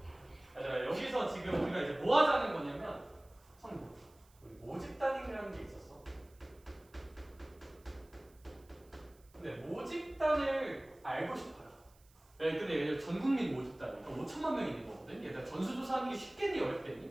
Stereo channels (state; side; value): noise; right; hiss, 30 dB below the sound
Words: 얘들아 여기서 지금 우리가 이제 뭐 하자는 거냐면 성분. 우리 모집 단위라는 게 있었어. 근데 모집단을 알고 싶어요. 네, 근데 얘들 전 국민 모집단, 그러니까 5천만 명 있는 거거든. 얘들 전수조사하는 게 쉽겠니